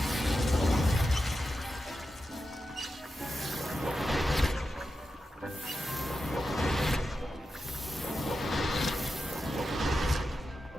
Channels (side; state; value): both; normal; correlation 0.90